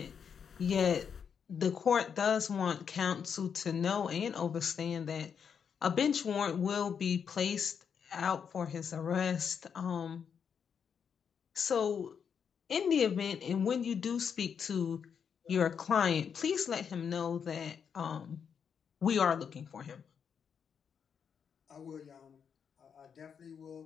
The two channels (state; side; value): quieter; right; 7.1 dB